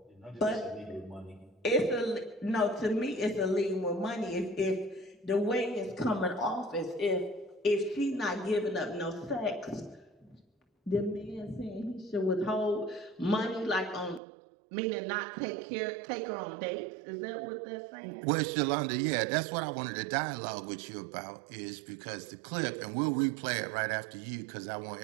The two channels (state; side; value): drops out; left; at 14.2 s